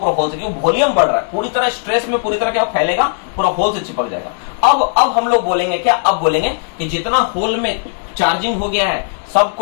होल से, क्योंकि वॉल्यूम बढ़ रहा है पूरी तरह, स्ट्रेस में पूरी तरह क्या फैलेगा, पूरा होल से चिपक जाएगा। अब हम लोग बोलेंगे क्या, अब बोलेंगे कि जितना होल में चार्जिंग हो गया है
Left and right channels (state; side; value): silent; right; 69 dB below the other